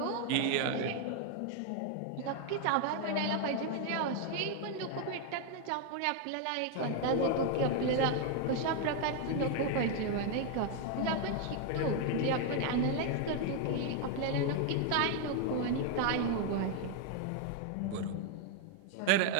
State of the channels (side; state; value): both; different; correlation 0.00